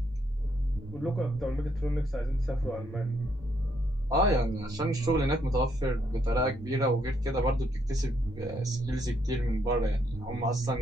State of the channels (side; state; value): both; normal; correlation 0.73